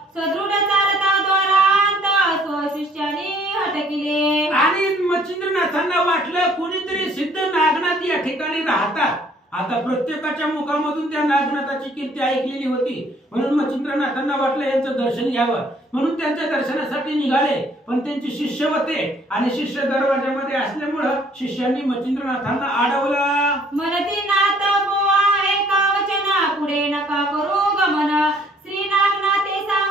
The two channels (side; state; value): both; normal; correlation 0.60